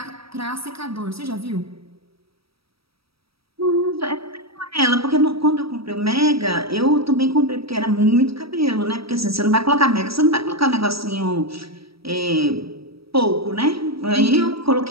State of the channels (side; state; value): left; late; 0.76 ms